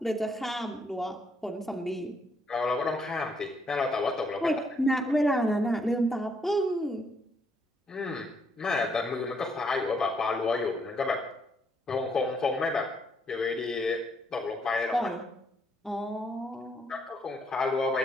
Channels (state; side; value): normal; both; correlation 0.73